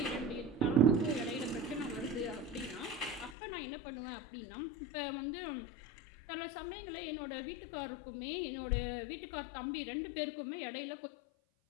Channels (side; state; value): right; drops out; at 3.4 s